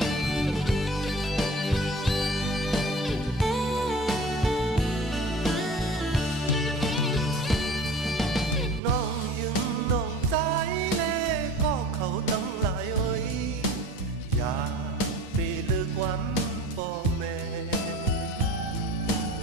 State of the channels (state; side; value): normal; both; correlation 0.42